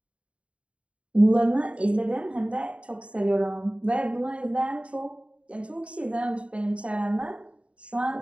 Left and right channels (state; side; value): late; left; 0.061 ms